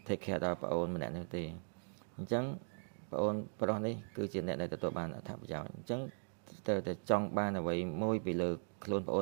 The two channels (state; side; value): silent; left; digital silence